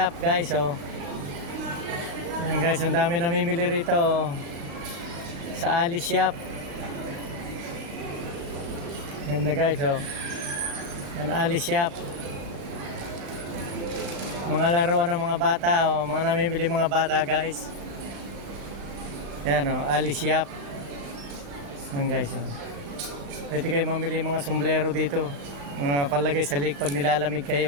guys. Oh. Yan guys, ang dami namimili rito oh. Sa Alice Shop. Ganda guys oh. Yan Alice Shop. Mga laruan ng mga bata oh, mga namimili mga bata guys. Yan oh, Alice Shop. Yan guys oh. Pwede kayo mamili mga sombrero dito. Mga palagay sa leg pag nilalamig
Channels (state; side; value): late; left; 36 ms